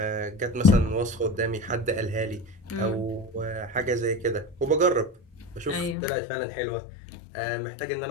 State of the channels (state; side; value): drops out; right; at 6.0 s